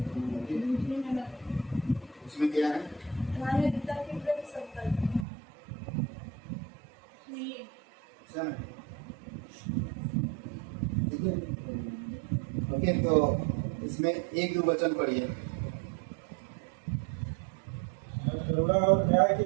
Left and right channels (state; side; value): drops out; left; at 5.2 s